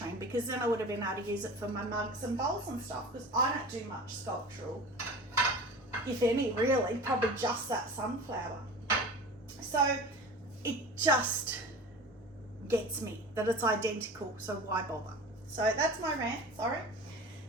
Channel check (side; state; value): both; normal; correlation 0.35